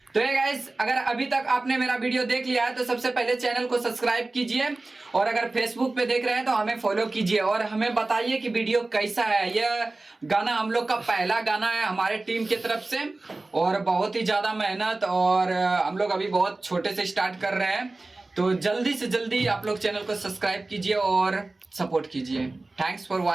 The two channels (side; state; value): left; quieter; 3.1 dB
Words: तो ये गाइस, अगर अभी तक आपने मेरा वीडियो देख लिया है तो सबसे पहले चैनल को सब्सक्राइब कीजिए, और अगर फेसबुक पे देख रहे हैं तो हमें फॉलो कीजिए, और हमें बताइए कि वीडियो कैसा है। यह गाना हम लोग का पहला गाना है हमारे टीम की तरफ से, और बहुत ही ज़्यादा मेहनत, और हम लोग अभी बहुत छोटे से स्टार्ट कर रहे हैं। तो जल्दी से जल्दी आप लोग चैनल को सब्सक्राइब कीजिए और सपोर्ट कीजिए। Thanks for